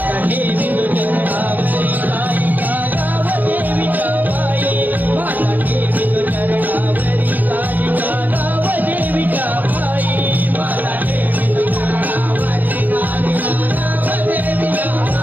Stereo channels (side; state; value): left; late; 0.084 ms